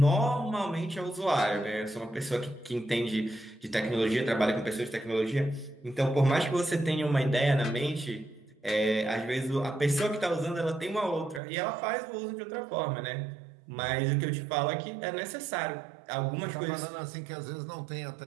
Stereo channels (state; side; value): drops out; left; at 11.4 s